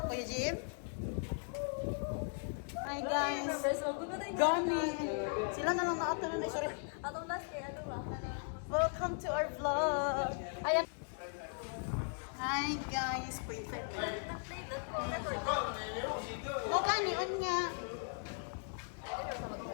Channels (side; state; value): right; silent; 52 dB below the other